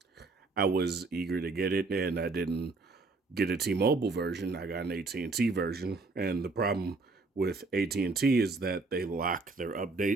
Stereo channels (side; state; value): left; quieter; 3.6 dB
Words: I was eager to get it, and I didn't get a T-Mobile version. I got an AT&T version, and the problem with AT&T is that they lock their